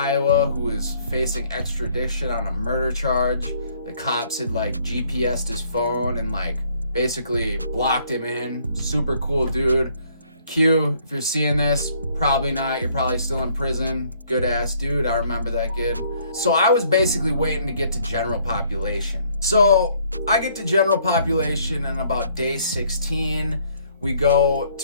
who was facing extradition on a murder charge. The cops had like GPS'd his phone and like basically blocked him in. Super cool dude. Q, if you're seeing this, probably not. You're probably still in prison. Good ass dude. I remember that kid. So I was basically waiting to get to general population. So I get to general population, and about day 16, we go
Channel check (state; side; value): inverted; both; correlation -0.64